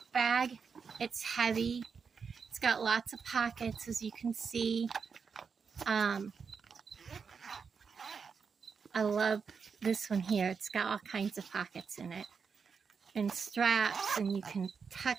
bag. It's heavy. It's got lots of pockets, as you can see. I love this one here. It's got all kinds of pockets in it and straps, and you can tuck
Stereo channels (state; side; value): quieter; left; 5.8 dB